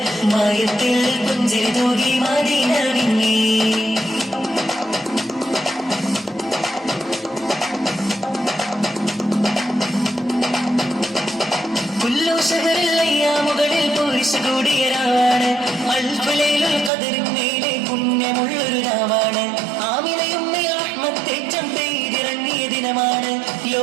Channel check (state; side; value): drops out; left; at 16.9 s